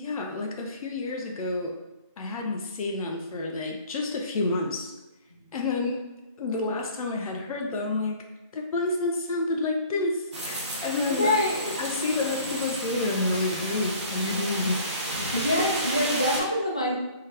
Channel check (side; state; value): both; inverted; correlation -0.49